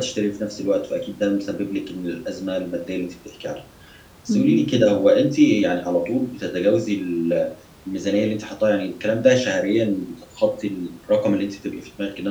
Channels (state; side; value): identical; both; correlation 1.00